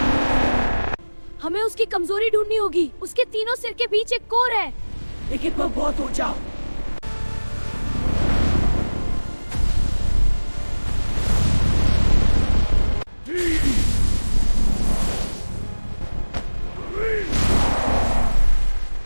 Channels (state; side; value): inverted; both; correlation -1.00